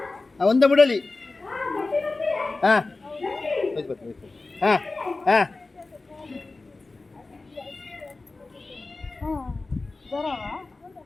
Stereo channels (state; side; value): quieter; right; 3.4 dB